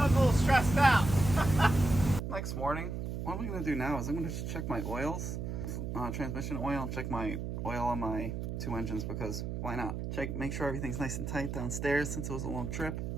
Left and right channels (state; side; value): noise; right; hum, 4 dB below the sound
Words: a little stressed out. Next morning, what I'm going to do now is I'm going to check my oils, transmission oil, and check my oil on my 2 engines, because why not? Make sure everything's nice and tight downstairs since it was a long trip.